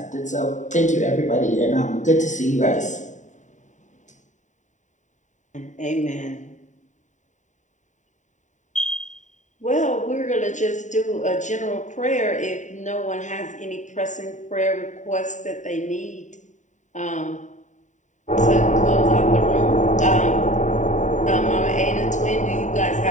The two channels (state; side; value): late; right; 0.36 ms